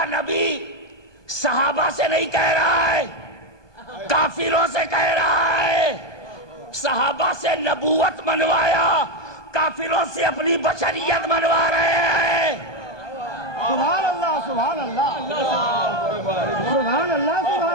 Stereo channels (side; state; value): right; late; 1.2 ms